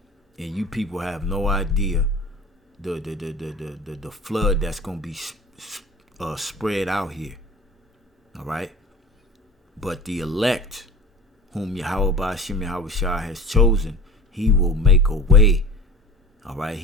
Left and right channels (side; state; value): both; normal; correlation 0.37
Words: and you people have no idea the flood that's gonna be spread out here. All right, but the elect, whom Yahweh Ba'ashem Yahushua has chosen, he will make a way. All right,